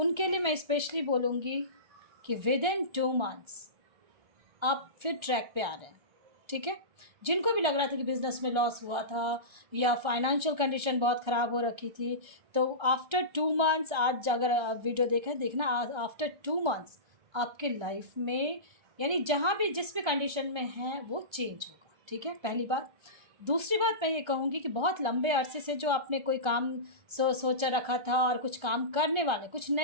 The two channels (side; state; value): left; late; 1.3 ms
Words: लिए मैं स्पेशली बोलूँगी कि विद इन 2 मंथ्स आप फिर ट्रैक पे आ रहे हैं, ठीक है। जिनको भी लग रहा था कि बिज़नेस में लॉस हुआ था या फाइनेंशियल कंडीशन बहुत ख़राब हो रखी थी, तो आफ्टर 2 मंथ्स, आज अगर आप वीडियो देखना, आफ्टर 2 मंथ्स आपके लाइफ में, यानी जहाँ भी जिस भी कंडीशन में हैं वो चेंज होगा, ठीक है, पहली बात। दूसरी बात मैं ये कहूँगी कि बहुत लंबे अरसे से जो आपने कोई काम सोचा रखा था और कुछ काम करने वाले, कुछ